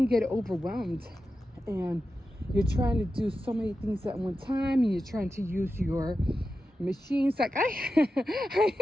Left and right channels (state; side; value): normal; both; correlation 0.91